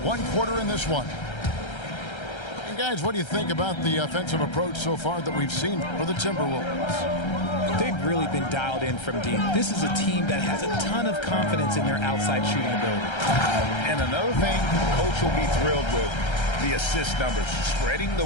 quarter in this one. And guys, what do you think about the offensive approach so far that we've seen for the Timberwolves? They've really been dialed in from deep. This is a team that has a ton of confidence in their outside shooting ability. And another thing Coach will be thrilled with, the assist numbers, spreading the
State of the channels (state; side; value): late; right; 1.3 ms